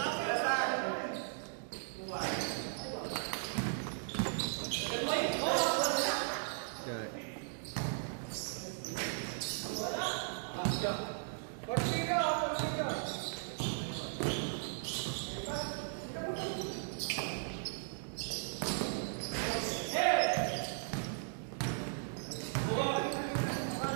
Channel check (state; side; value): silent; left; digital silence